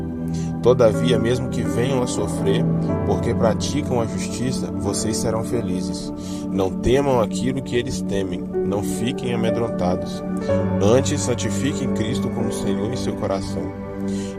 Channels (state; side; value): identical; both; correlation 1.00